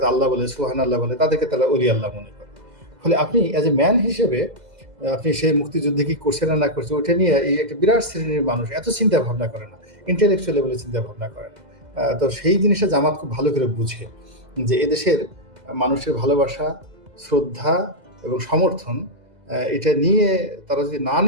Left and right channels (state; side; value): late; left; 2.0 ms